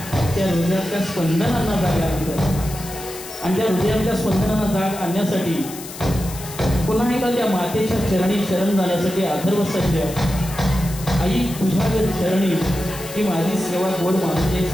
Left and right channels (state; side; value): noise; left; hiss, 13 dB below the sound